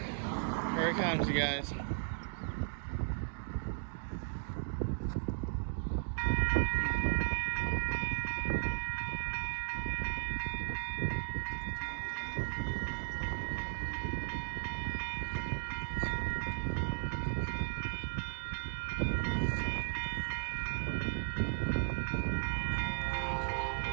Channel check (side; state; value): left; silent; digital silence